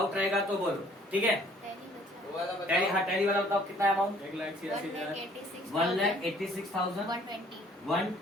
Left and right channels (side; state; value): both; normal; correlation 0.58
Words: रहेगा तो बोलो, ठीक है। टैली, हाँ टैली वाला बताओ कितना अमाउंट, 1,86,000 1,86,120।